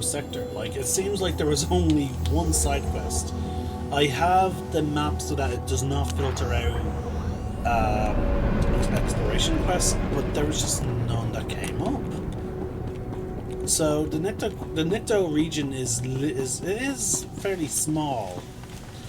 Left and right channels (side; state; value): both; identical; correlation 1.00